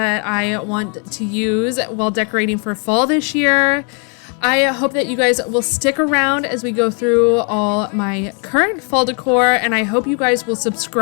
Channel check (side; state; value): right; quieter; 37.8 dB